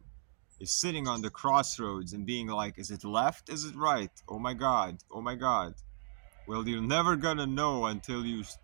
Is sitting on the crossroads and being like, is it left? Is it right? Oh my god. Oh my god. Well, you're never gonna know until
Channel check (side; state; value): left; silent; digital silence